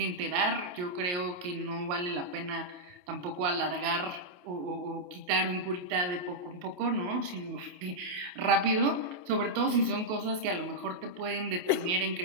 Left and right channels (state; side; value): late; left; 28 ms